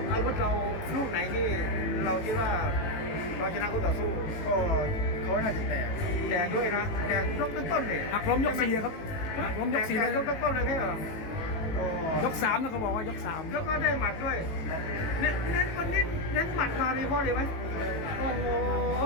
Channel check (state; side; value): late; right; 18 ms